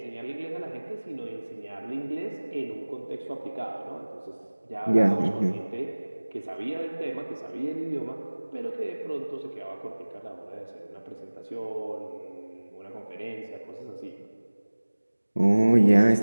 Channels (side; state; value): both; inverted; correlation -1.00